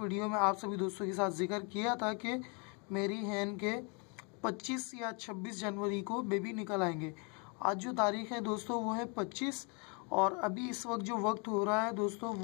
वीडियो में आप सभी दोस्तों के साथ जिक्र किया था कि मेरी हैंड के 25 या 26 जनवरी को बेबी निकल आएंगे। आज जो तारीख है दोस्तों वो है 25 और अभी इस वक्त जो वक्त हो रहा है दोस्तों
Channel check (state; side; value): quieter; right; 34.1 dB